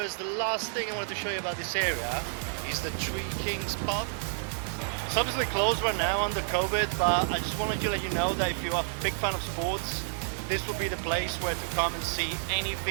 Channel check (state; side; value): silent; left; 58 dB below the other